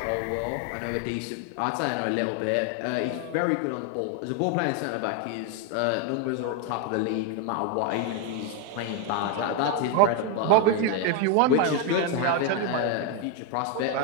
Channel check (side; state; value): both; different; correlation 0.01